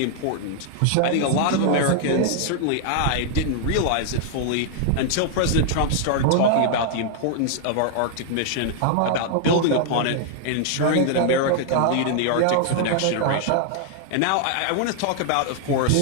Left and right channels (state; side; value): different; both; correlation 0.00